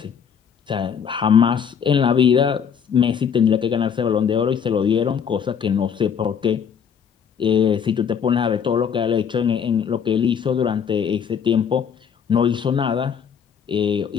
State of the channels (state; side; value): quieter; right; 7.4 dB